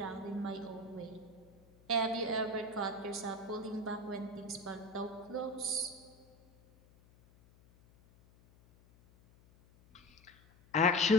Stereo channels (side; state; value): left; noise; hum, 27 dB below the sound